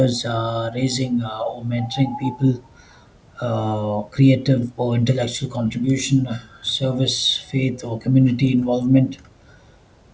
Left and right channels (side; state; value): both; identical; correlation 1.00